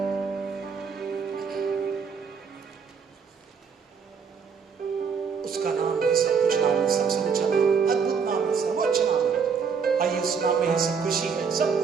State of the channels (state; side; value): quieter; left; 6.0 dB